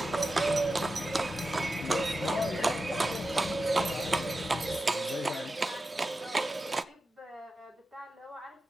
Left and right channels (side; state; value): both; normal; correlation 0.92